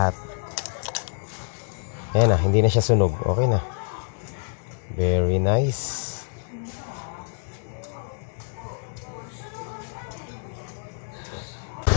Ayan na, hindi na siya sunog. Okay na. Very nice.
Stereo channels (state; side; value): silent; right; 61 dB below the other